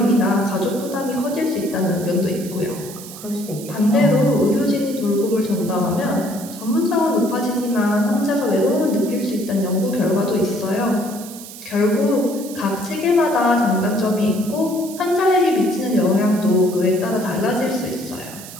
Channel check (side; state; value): right; noise; hiss, 14 dB below the sound